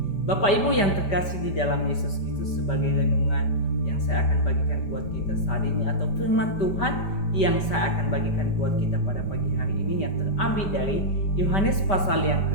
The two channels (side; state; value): right; late; 5.1 ms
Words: Bapak Ibu yang terkasih di dalam Yesus Kristus, sebagai renungan yang saya akan bagikan buat kita saat ini atau firman Tuhan yang saya akan bagikan buat kita pada pagi hari ini yang terambil dari Yohanes pasal yang